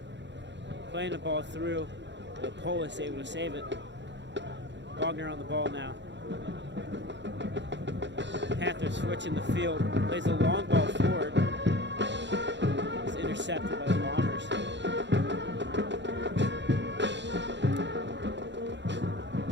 Playing the ball through. The Polis able to save it. Wagner on the ball now. Panthers switching the field. Plays a long ball forward. It's intercepted by the Bombers.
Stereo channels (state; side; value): late; left; 0.52 ms